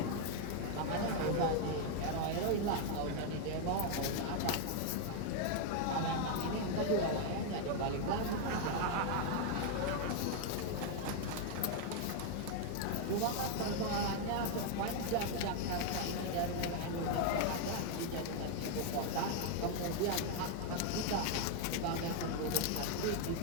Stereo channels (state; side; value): different; both; correlation 0.00